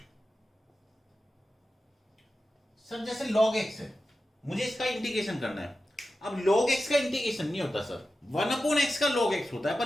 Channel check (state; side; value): normal; both; correlation 0.92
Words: सर जैसे log x है, मुझे इसका इंटीग्रेशन करना है। अब log x का इंटीग्रेशन नहीं होता सर, 1/x का log x होता है,